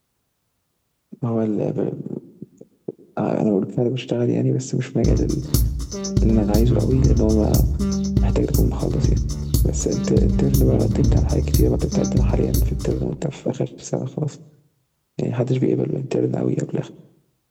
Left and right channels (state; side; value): identical; both; correlation 1.00